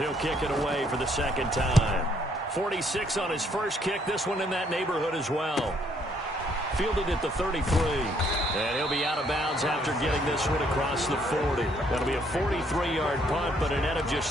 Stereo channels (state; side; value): normal; both; correlation 0.68